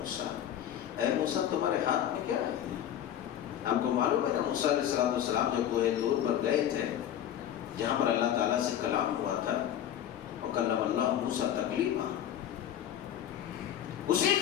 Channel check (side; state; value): right; quieter; 10.7 dB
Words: اے موسیٰ تمہارے ہاتھ میں کیا ہے؟ آپ کو معلوم ہے نا، موسیٰ علیہ السلام جب کوہ طور پر گئے تھے، جہاں پر اللہ تعالیٰ سے کلام ہوا تھا، وَكَلَّمَ اللَّهُ مُوسَىٰ تَكْلِيمًا، اسی